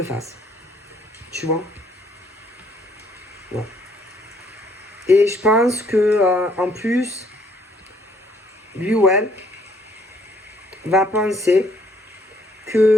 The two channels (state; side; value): normal; both; correlation 0.65